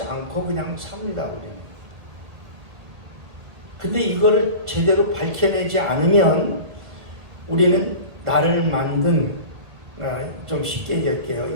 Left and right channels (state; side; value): late; left; 2.0 ms